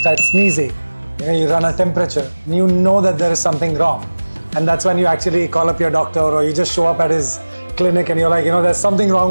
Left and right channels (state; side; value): inverted; both; correlation -1.00